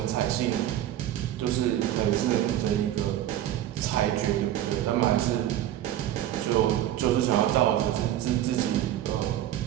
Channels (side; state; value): left; quieter; 12.3 dB